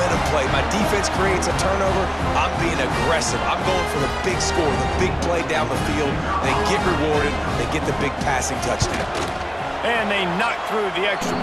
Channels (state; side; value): identical; both; correlation 1.00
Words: play. My defense creates a turnover. I'm being aggressive. I'm going for the big score, the big play down the field. They get rewarded. They get the big passing touchdown. And they knock through the extra